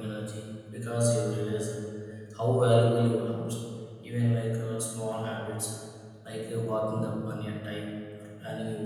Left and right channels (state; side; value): identical; both; correlation 1.00